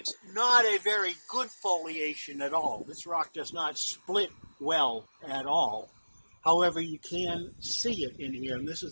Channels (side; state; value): both; inverted; correlation -1.00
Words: not a very good foliation at all. This rock does not split well at all. However, you can see it in here, and this